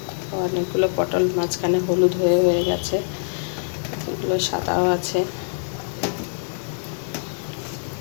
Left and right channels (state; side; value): silent; right; 63 dB below the other